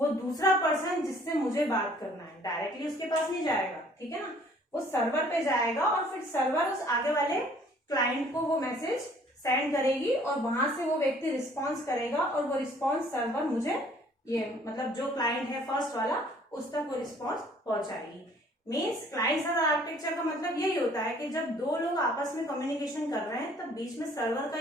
दूसरा पर्सन जिससे मुझे बात करना है, डायरेक्टली उसके पास नहीं जाएगा, ठीक है ना, वो सर्वर पे जाएगा और फिर सर्वर उस आगे वाले क्लाइंट को वो मैसेज सेंड करेगी और वहां से वो व्यक्ति रिस्पॉन्स करेगा और वो रिस्पॉन्स सर्वर मुझे, ये मतलब जो क्लाइंट है फर्स्ट वाला, उस तक वो रिस्पॉन्स पहुंचाएगी। मीन्स क्लाइंट सर्वर आर्किटेक्चर का मतलब यही होता है कि जब दो लोग आपस में कम्युनिकेशन कर रहे हैं तब बीच में सर्वर का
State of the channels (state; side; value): normal; both; correlation 0.57